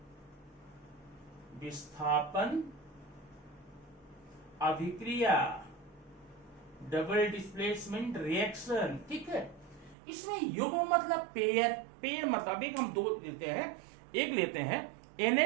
विस्थापन अभिक्रिया, डबल डिस्प्लेसमेंट रिएक्शन। ठीक है। इसमें युग्म मतलब पेयर, पेयर मतलब एक हम दो लेते हैं, एक लेते हैं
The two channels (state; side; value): drops out; left; at 10.0 s